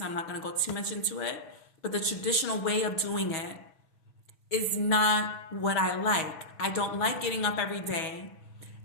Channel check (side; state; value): right; late; 6.2 ms